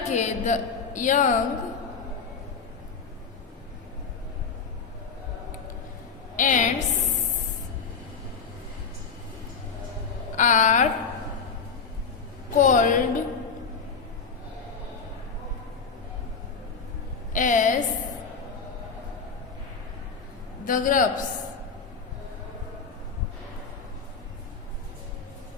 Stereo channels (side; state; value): right; quieter; 5.3 dB